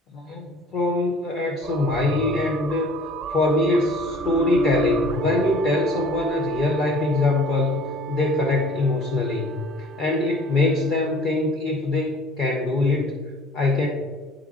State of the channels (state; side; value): normal; both; correlation 0.50